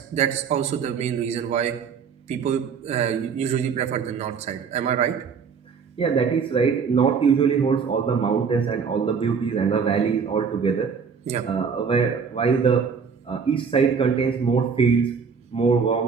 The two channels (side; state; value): left; quieter; 6.1 dB